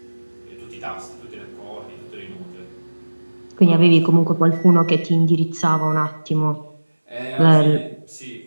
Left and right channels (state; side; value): inverted; both; correlation -1.00